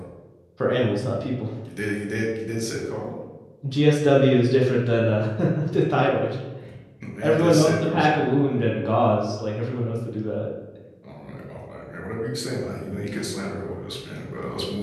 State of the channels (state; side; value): identical; both; correlation 1.00